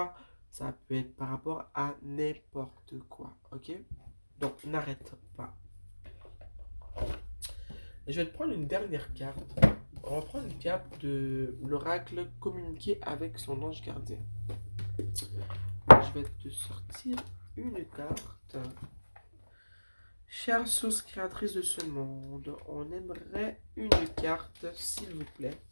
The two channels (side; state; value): both; inverted; correlation -1.00